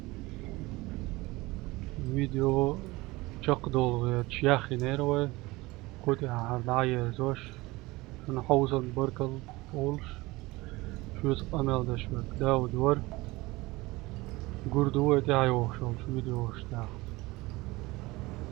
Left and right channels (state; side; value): quieter; left; 21.3 dB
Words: فيديو شق دول تشياخي نيروي كودي عالعير زوش شن حوزن بركل أولش شوز أمل دشوك داو دور قردوه دي عيوشون شو فيديو اشتاح